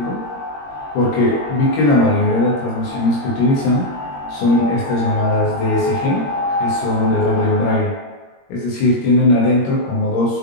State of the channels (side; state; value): right; late; 21 ms